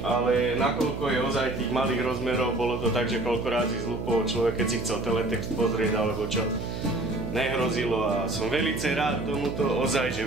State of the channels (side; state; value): right; noise; hum, 6 dB below the sound